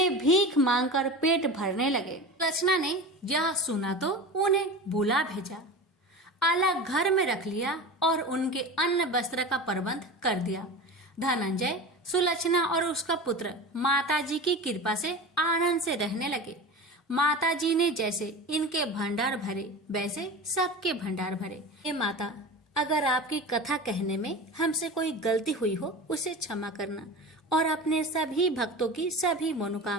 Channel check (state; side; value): normal; both; correlation 0.31